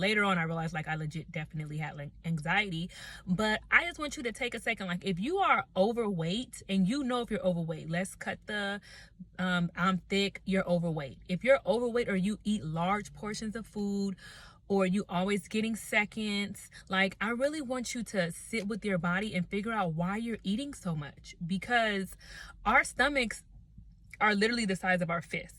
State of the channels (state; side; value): identical; both; correlation 1.00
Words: on, I realized like I legit definitely had like anxiety. But I just want you to take a second. Like if you are overweight and you know if you're overweight, let's cut the I'm thick, you're overweight. If you're overweight or you eat large portions of food, or you always getting seconds, like I really want you to sit with your body and figure out why you're eating so much, because our stomachs are literally the size of our